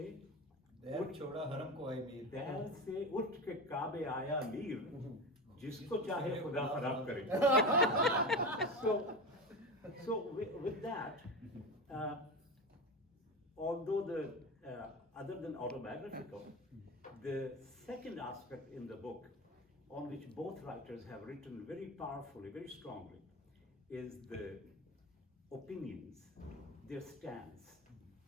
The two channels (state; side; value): normal; both; correlation 0.25